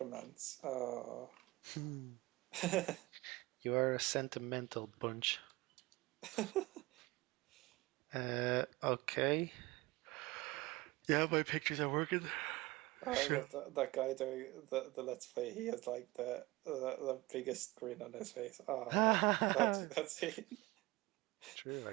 romance. Oh. You are a sentimental bunch. Okay. Yeah, my pictures are working. I Sure. love that guy doing the Let's Play. He has like the biggest grin on his face. Oh, that's it. True,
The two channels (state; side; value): quieter; left; 21.0 dB